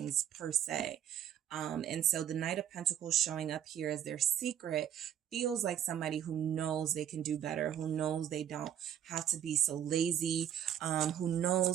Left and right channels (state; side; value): quieter; left; 9.9 dB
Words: per se. And so the Knight of Pentacles showing up here as their secret feels like somebody who knows they can do better, who knows they don't have to be so lazy, who